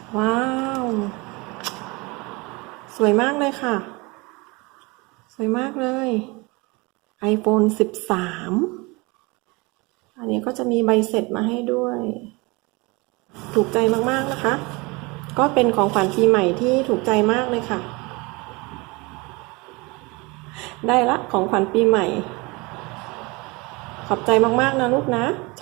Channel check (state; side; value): quieter; left; 25.9 dB